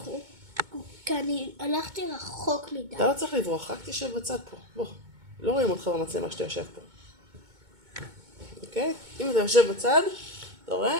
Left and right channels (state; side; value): late; left; 2.2 ms